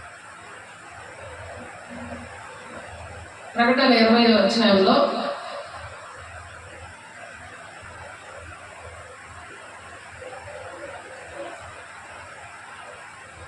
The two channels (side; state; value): both; identical; correlation 1.00